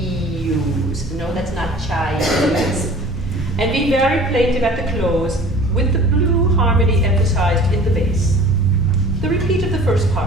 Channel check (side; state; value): both; normal; correlation 0.46